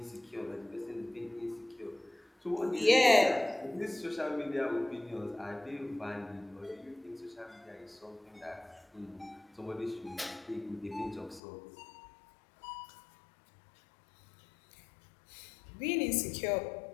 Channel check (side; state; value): right; drops out; at 11.4 s